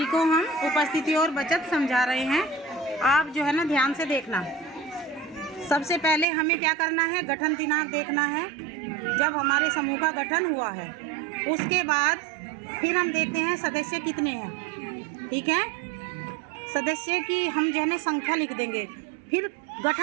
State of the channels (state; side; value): drops out; left; at 6.2 s